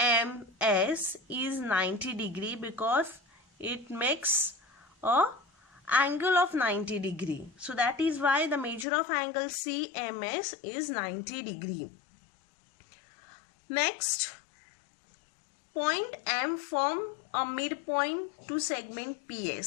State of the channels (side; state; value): right; drops out; at 8.8 s